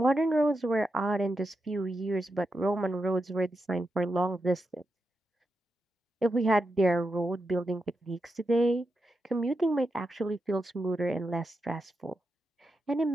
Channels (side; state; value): both; normal; correlation 0.87